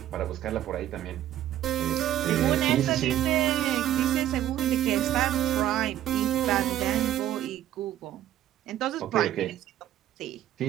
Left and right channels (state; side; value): quieter; left; 12.3 dB